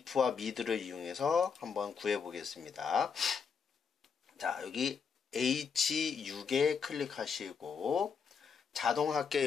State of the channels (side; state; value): right; quieter; 6.1 dB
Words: mid를 이용해서 한번 구해 보겠습니다. 자, 여기 H6에 클릭하시고